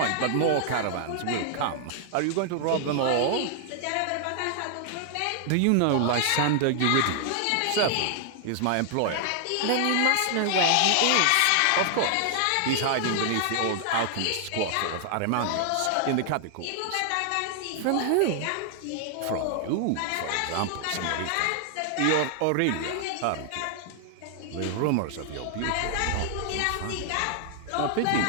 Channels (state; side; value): different; both; correlation 0.00